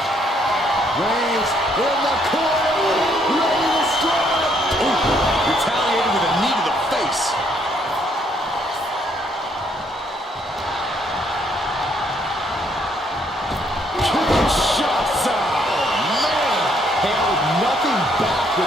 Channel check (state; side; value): normal; both; correlation 0.69